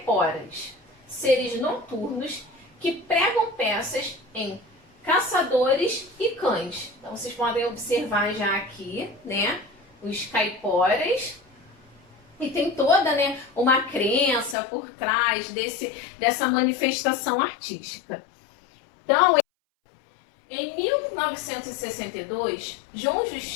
seres noturnos que pregam peças em caçadores e cães. Então, vocês podem observar já aqui, né, os caiporas. E tem toda, né, uma crença por trás dessa manifestação artística. Então, em 1962, João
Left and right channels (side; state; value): right; drops out; at 14.6 s